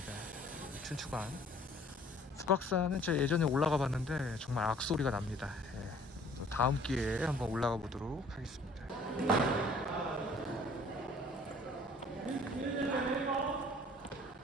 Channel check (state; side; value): normal; both; correlation 0.54